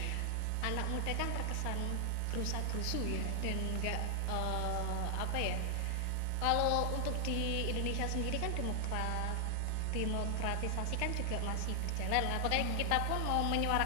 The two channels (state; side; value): different; both; correlation 0.00